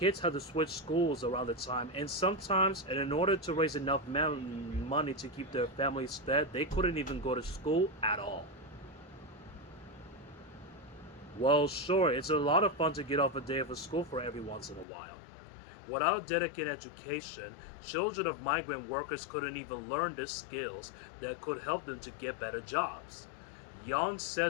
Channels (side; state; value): right; drops out; at 14.9 s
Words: had to switch schools around the time, and sometimes, and in order to raise enough money to keep their families fed, they couldn't even go to school at all. Well, sure, it's a lot of fun to get off a day of school for every once in a while. Without dedicated education, children of migrant workers couldn't even learn the skills that could help them to get better jobs. Young